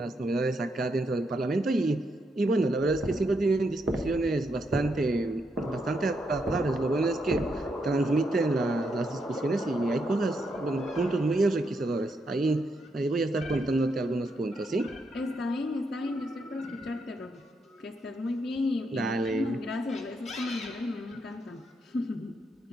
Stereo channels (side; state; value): both; normal; correlation 0.79